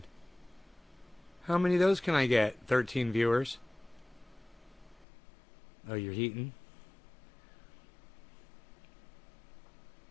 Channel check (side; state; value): right; drops out; at 5.1 s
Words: How many of those can I get? 13 viewers. Oh, you're heating?